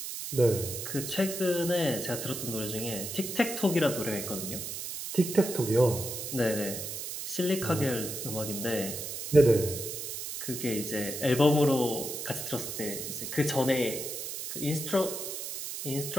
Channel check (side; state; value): right; noise; hiss, 6 dB below the sound